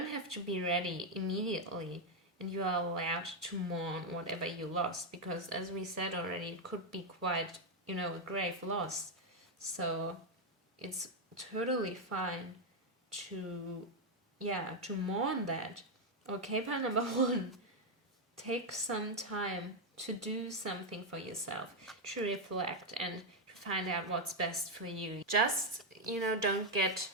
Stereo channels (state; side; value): normal; both; correlation 0.02